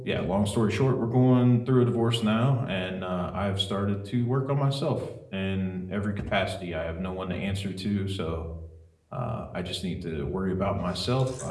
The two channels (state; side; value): identical; both; correlation 1.00